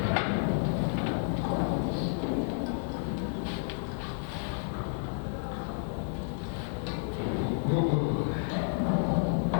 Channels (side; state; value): right; silent; 57 dB below the other